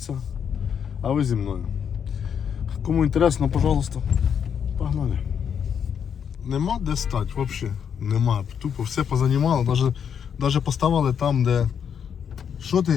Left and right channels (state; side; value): quieter; right; 7.8 dB